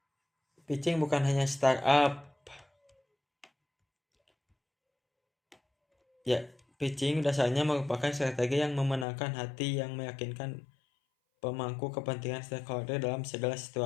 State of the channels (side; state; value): right; drops out; at 9.1 s